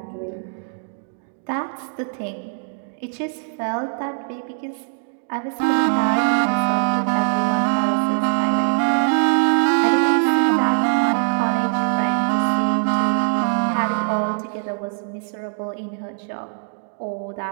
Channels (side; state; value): left; silent; digital silence